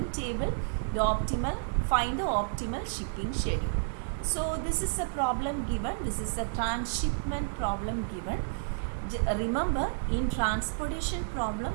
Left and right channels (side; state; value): left; silent; 57 dB below the other